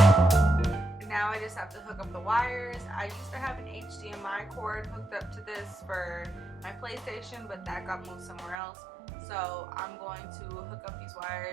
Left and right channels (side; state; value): left; drops out; at 8.6 s